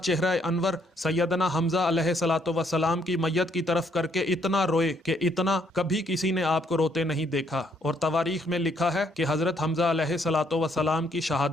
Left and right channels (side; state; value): both; normal; correlation 0.70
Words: انور سیدنا حمزہ علیہ الصلوۃ والسلام کی میت کی طرف کر کے اتنا روئے کہ اتنا کبھی کسی نے آپ کو روتے نہیں دیکھا، اور تواریخ میں لکھا ہے کہ حضرت حمزہ علیہ الصلوۃ والسلام کی